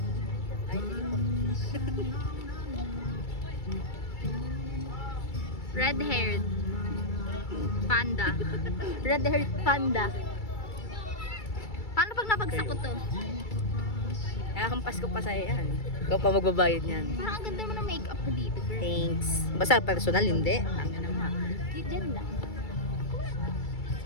Ay, sige po. Red-haired panda. Red-haired panda. Paano pag napagsak ko to? Nakakampas ko pa sa'yo yan. Ikaw pa magbabayad yan. Parang ang ganda mo ng makeup mo dito, girl. Thanks. Basta personal, hindi. Tanga na nga. Diyan lang.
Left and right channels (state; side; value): late; right; 2.3 ms